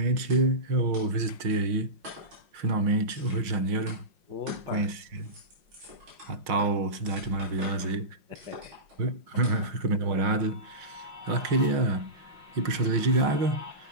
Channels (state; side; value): late; left; 5.6 ms